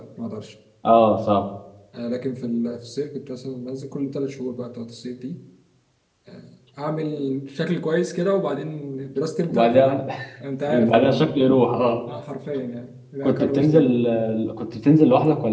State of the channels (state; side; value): identical; both; correlation 1.00